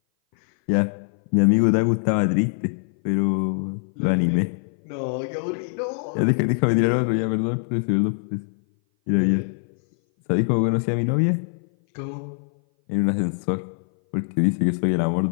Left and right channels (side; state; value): right; silent; 58 dB below the other